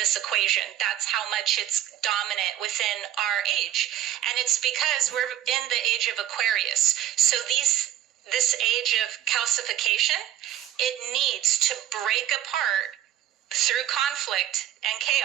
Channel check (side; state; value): left; quieter; 12.0 dB